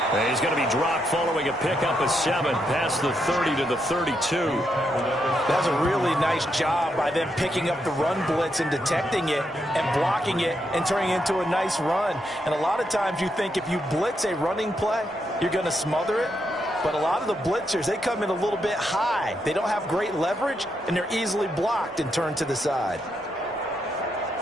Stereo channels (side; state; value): both; normal; correlation 0.80